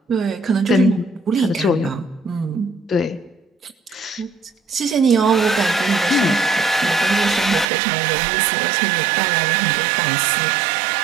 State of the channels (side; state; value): left; drops out; at 7.7 s